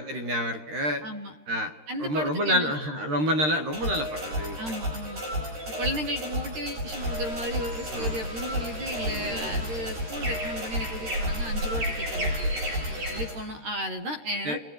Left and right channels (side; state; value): left; late; 13 ms